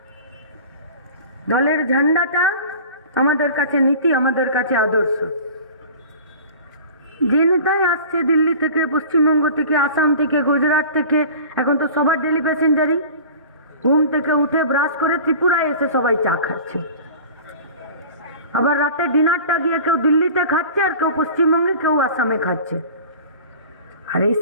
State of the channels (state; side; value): inverted; both; correlation -0.40